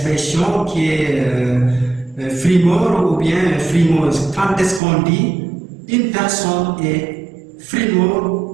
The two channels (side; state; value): left; drops out; at 4.8 s